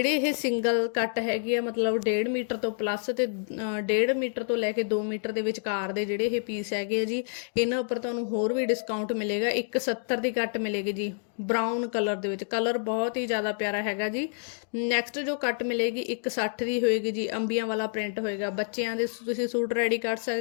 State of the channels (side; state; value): right; silent; digital silence